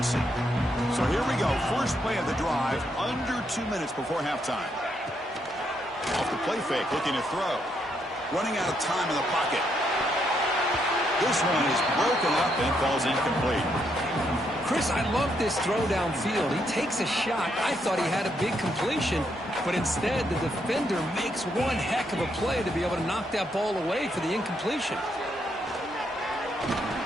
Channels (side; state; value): both; normal; correlation 0.76